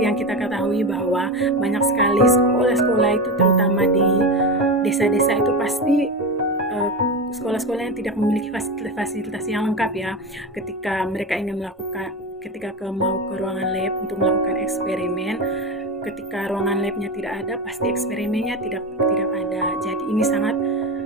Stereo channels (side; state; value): both; normal; correlation 0.21